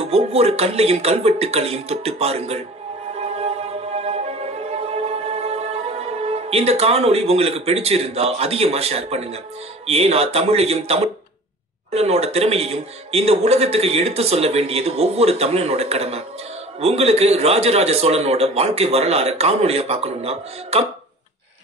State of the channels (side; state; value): both; normal; correlation 0.42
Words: ஒவ்வொரு கல்லையும் கல்வெட்டுக்களையும் தொட்டு பாருங்கள். இந்த காணொளி உங்களுக்கு பிடிச்சிருந்தா அதிகமா ஷேர் பண்ணுங்க. ஏன்னா தமிழையும் தமிழனோட திறமையையும் இந்த உலகத்துக்கு எடுத்து சொல்ல வேண்டியது ஒவ்வொரு தமிழனோட கடமை. உங்களுக்கு ராஜராஜ சோழனோட வாழ்க்கை வரலாறு காணொளியா பார்க்கணும்னா